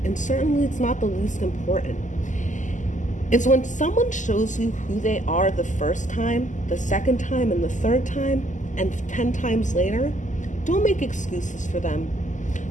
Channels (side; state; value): right; late; 0.36 ms